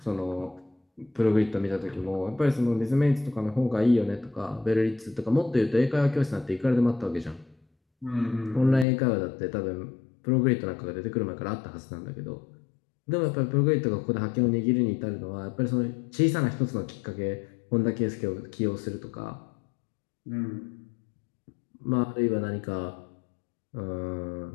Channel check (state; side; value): drops out; right; at 8.8 s